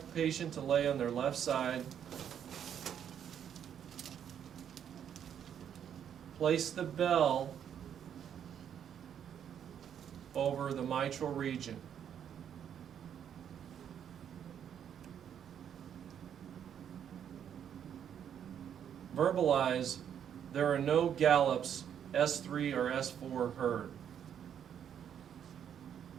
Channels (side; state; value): left; quieter; 8.9 dB